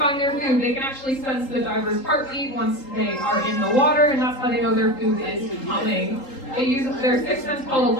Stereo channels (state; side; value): late; right; 3.8 ms